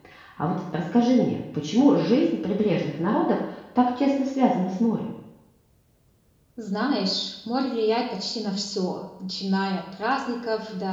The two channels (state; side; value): identical; both; correlation 1.00